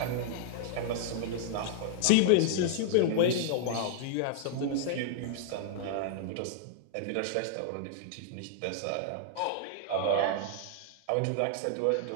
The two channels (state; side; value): different; both; correlation -0.02